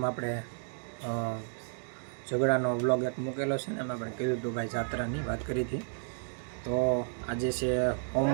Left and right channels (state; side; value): silent; left; digital silence